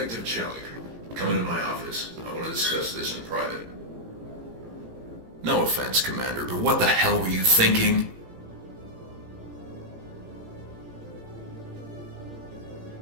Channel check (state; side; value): late; left; 17 ms